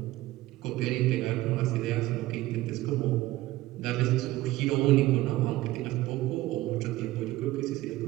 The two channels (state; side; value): quieter; left; 17.1 dB